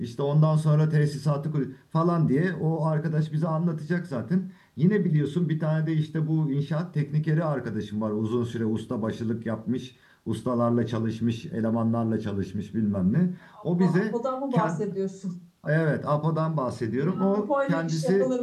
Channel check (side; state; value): both; identical; correlation 1.00